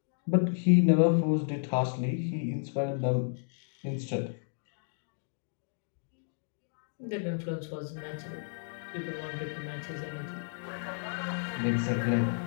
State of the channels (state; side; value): silent; right; digital silence